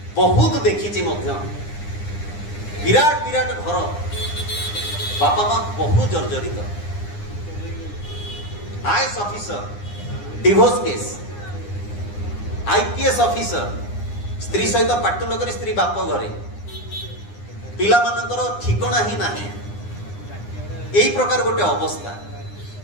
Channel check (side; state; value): right; late; 9.8 ms